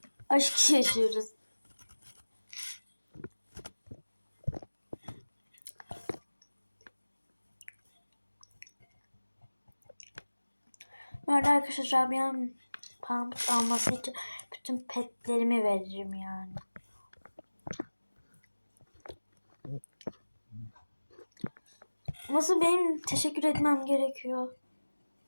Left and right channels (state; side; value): inverted; both; correlation -1.00